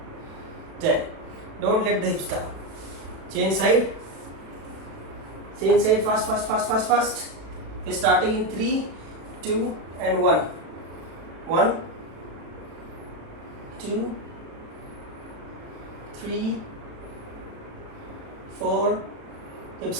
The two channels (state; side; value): late; left; 36 ms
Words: 10. Don't let the hips down. Change side, fast. We're starting in 3, 2, and 1. 1, 2, 3, 4, hips